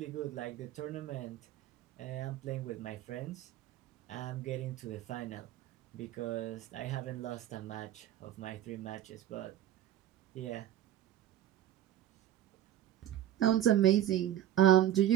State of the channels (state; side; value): quieter; left; 12.1 dB